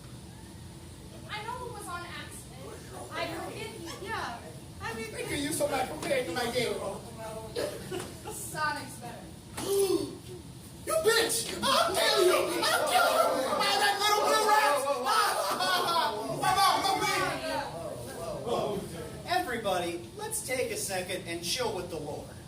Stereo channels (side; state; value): both; identical; correlation 1.00